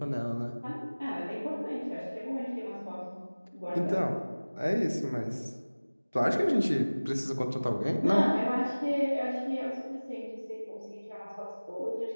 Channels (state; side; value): inverted; both; correlation -1.00